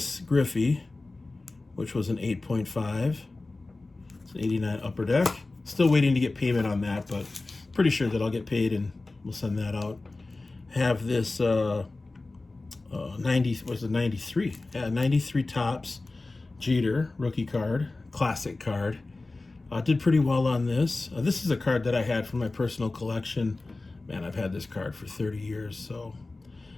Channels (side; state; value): right; quieter; 3.3 dB